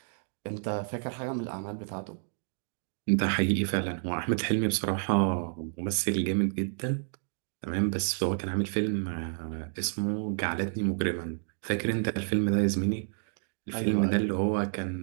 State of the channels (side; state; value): left; silent; digital silence